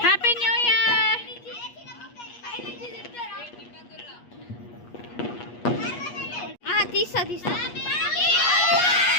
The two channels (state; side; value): late; right; 8.4 ms